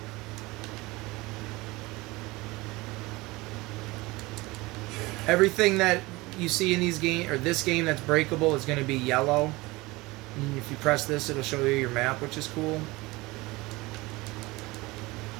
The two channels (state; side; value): quieter; left; 21.8 dB